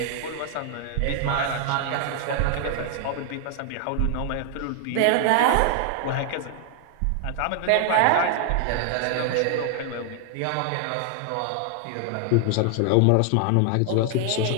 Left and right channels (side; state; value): both; different; correlation 0.00